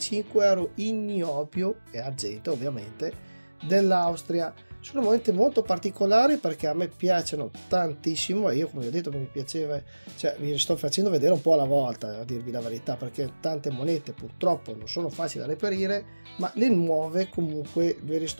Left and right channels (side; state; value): both; inverted; correlation -1.00